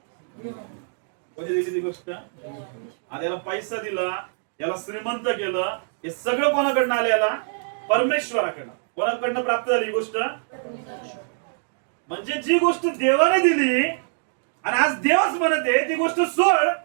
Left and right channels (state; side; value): silent; left; digital silence